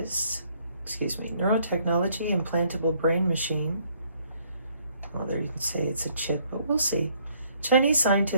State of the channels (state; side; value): inverted; both; correlation -0.66